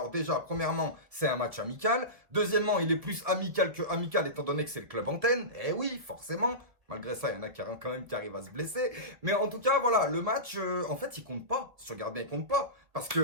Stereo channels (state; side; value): late; left; 1.7 ms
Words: déjà, premièrement, c'est un match amical. Deuxièmement, il est plus amical que amical, étant donné que c'est le club antenne. Eh oui, forcément. Malgré ça, il y en a quand même qui arrivent à se blesser. Mais en tout cas, voilà, le match, en fait, il compte pas. Si tu regardes bien, il compte pas. Parce